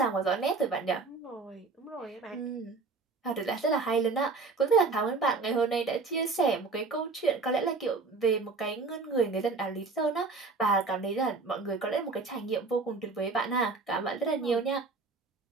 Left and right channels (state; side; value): quieter; left; 4.1 dB